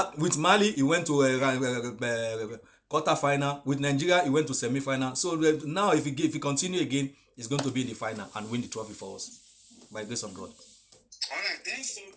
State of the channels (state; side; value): identical; both; correlation 1.00